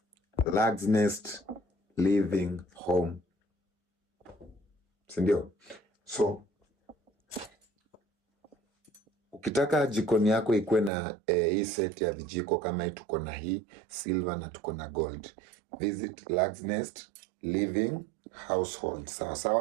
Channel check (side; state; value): left; drops out; at 10.9 s